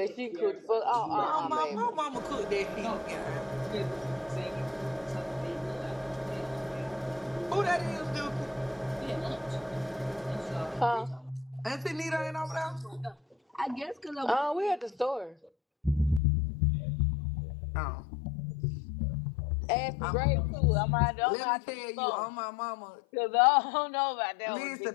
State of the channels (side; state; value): right; drops out; at 16.2 s